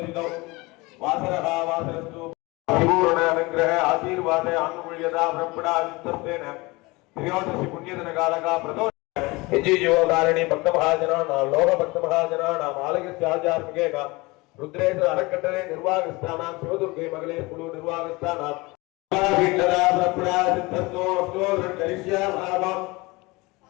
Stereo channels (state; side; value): quieter; right; 23.6 dB